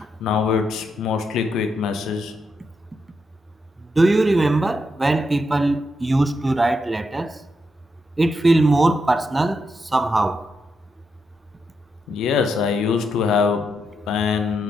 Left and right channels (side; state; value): both; normal; correlation 0.83